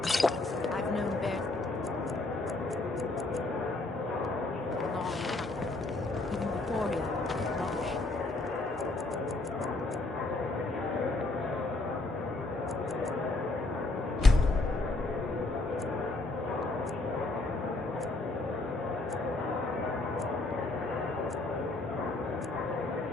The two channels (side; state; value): right; quieter; 3.0 dB